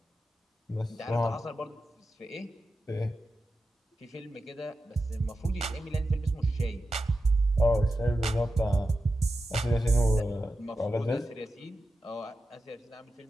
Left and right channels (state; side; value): normal; both; correlation 0.91